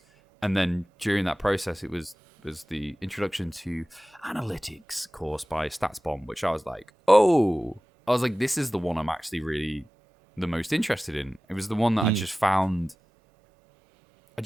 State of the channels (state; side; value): normal; both; correlation 0.96